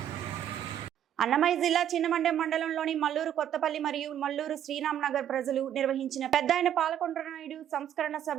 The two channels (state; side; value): quieter; left; 10.3 dB